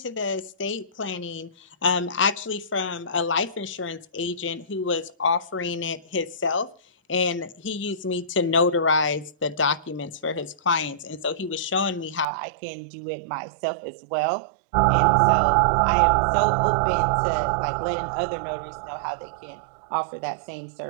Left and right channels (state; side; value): drops out; left; at 12.2 s